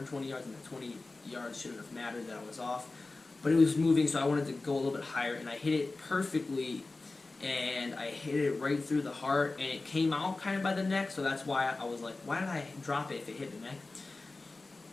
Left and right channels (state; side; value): quieter; right; 3.4 dB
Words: yards, and the 20 yards shouldn't have mattered that I was off. But it was moving, so I wanted to go a little bit higher, and I hit it perfectly, and I hit it right through the heart, and it came out kind of by the neck, so that's why I was like, why did I drop it if it hit the neck?